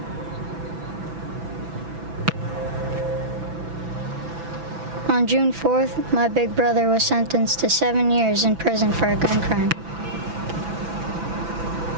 On June 4th, my big brother was sentenced to 7 years in prison for a gun crime.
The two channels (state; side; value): late; left; 6.0 ms